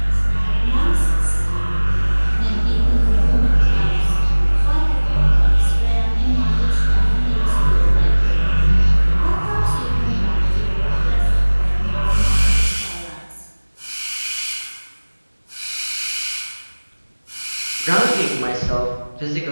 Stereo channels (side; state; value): both; inverted; correlation -1.00